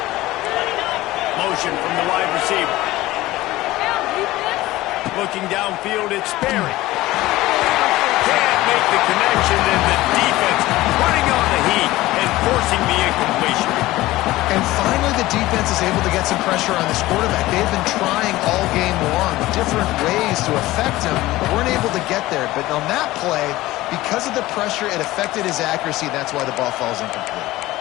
Motion from the wide receiver. Looking downfield, it's Sperry. Can't make the connection, and the defense putting on the heat and forcing the incompletion. And finally, the defense is able to get some pressure on this quarterback. They've been trying all game long different ways to affect him, but weren't able to get there. But on that play, because of the pressure, it affected his accuracy. That's why the ball falls incomplete.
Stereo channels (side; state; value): right; quieter; 17.6 dB